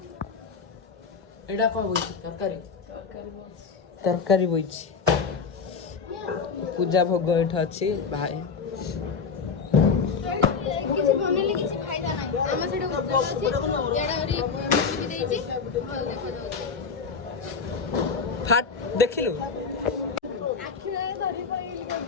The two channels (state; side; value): quieter; right; 5.4 dB